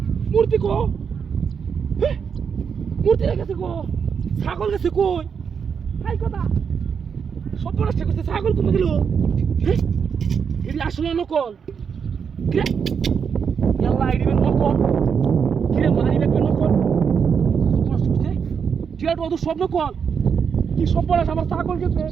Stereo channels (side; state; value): left; quieter; 6.7 dB